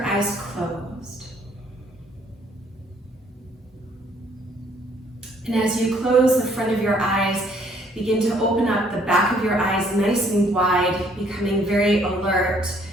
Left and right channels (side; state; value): both; normal; correlation 0.63